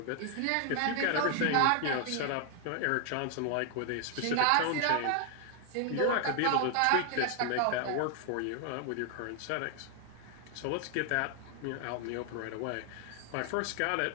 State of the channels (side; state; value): both; different; correlation 0.00